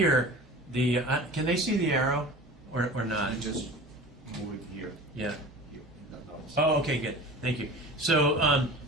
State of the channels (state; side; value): normal; both; correlation 0.38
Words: can they see the arrow or not? You just move it here. Yeah. Here, in that nose. Oh, okay, good. Thank you. So